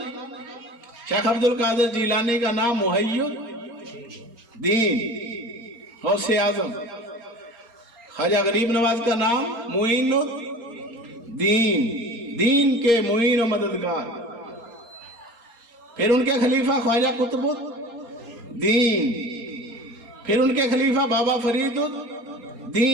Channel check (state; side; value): late; left; 4.3 ms